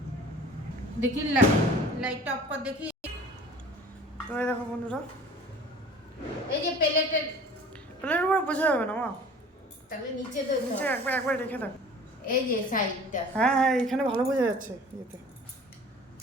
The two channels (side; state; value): both; normal; correlation 0.45